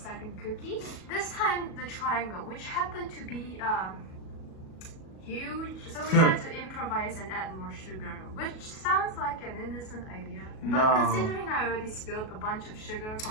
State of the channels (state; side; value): late; right; 37 ms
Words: cookie. This time, the triangle, which happened to be huge. So we had to improvise and add more sugar, which sounds like an innocent idea. But No. considering I already spilled a bunch of sugar